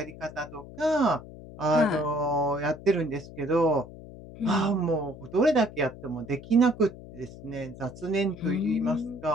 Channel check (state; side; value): noise; left; hum, 16 dB below the sound